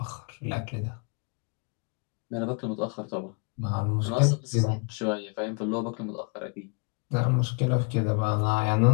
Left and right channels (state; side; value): quieter; right; 35.1 dB